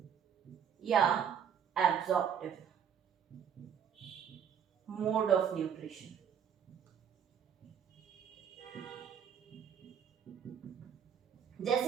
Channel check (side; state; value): left; quieter; 8.0 dB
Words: या एब्जॉर्प्टिव मोड ऑफ न्यूट्रिशन।